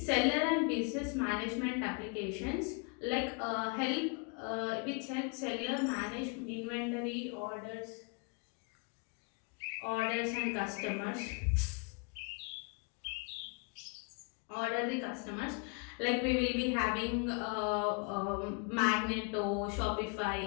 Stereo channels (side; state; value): right; quieter; 34.2 dB